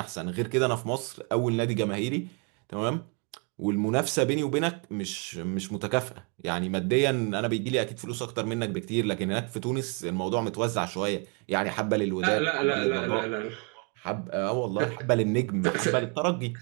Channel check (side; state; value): left; quieter; 35.6 dB